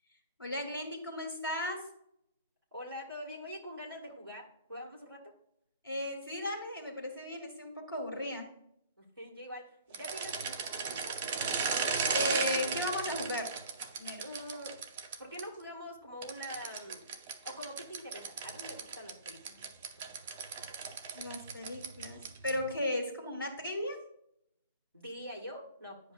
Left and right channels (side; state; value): both; inverted; correlation -0.47